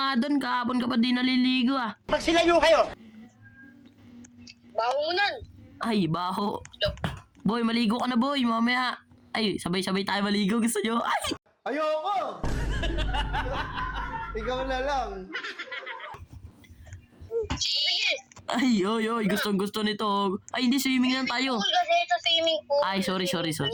doon. Kahapon ka pa di naliligo, ah. Magsilayo kayo! Baho mo nun. Ay, baho. Boy, maligo ka na, boy. Mamaya. Ay, sabay-sabay tayo maligo. Gusto nyo? Ay! Ayoko! Ikaw na lang. Sige. Ay, oy. Gustong-gusto nito. Ay, hindi. Swimming lang tayo. Pool kasi sa swimming pool. Ay, sorry.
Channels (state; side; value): identical; both; correlation 1.00